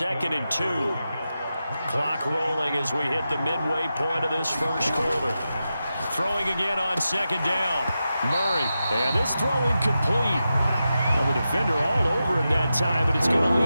and 2. Clock rolling as we hit the midway point of this first quarter. Throwing again on 2nd down. Murray, and this throw incomplete. Well, the defender all over him that time, but it's going to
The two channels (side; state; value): both; inverted; correlation -0.90